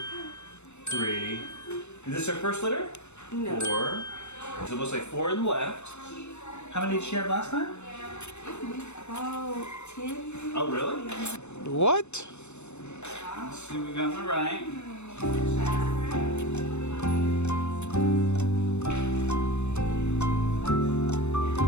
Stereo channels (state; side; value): late; right; 0.82 ms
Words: 3. Is this her first litter? No. 4. So it looks like 4 on the left. How many did she have last time? About 10. Oh, really? What? Let's see what we got on the right.